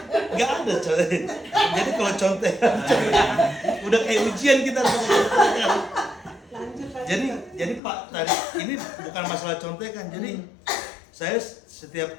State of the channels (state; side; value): drops out; right; at 7.8 s